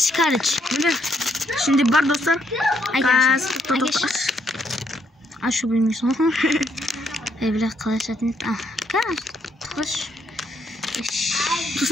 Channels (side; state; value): both; normal; correlation 0.73